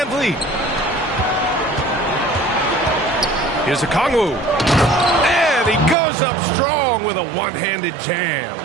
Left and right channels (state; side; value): drops out; left; at 6.0 s